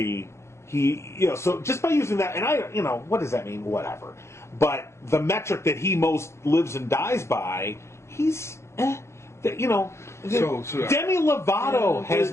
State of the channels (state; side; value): late; right; 0.13 ms